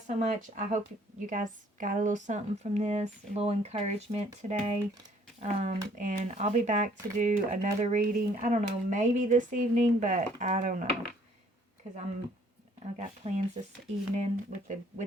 so much. I hope you guys got a little something from this, a little encouragement today. And I'll be back to do another reading. I don't know, maybe this evening, but I don't know, because I've got plans this evening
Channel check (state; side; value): normal; both; correlation 0.60